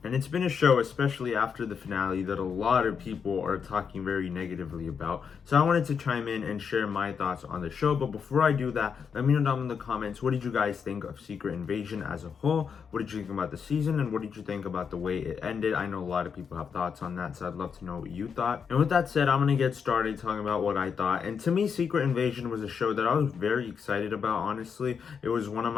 and it's been a show, especially after the finale, that a lot of people are talking very negatively about. So I wanted to chime in and share my thoughts on the show, but before I do that, let me know down in the comments, what did you guys think of Secret Invasion as a whole? What did you think about the season, and what did you think about the way it ended? I know a lot of people have thoughts on that, so I'd love to know what you thought. And with that said, I'm going to get started talking about what I thought. And to me, Secret Invasion was a show that I was very excited about, honestly. It was one of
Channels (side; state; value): right; quieter; 6.5 dB